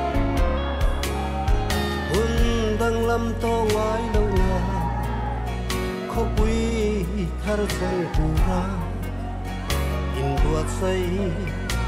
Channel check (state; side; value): identical; both; correlation 1.00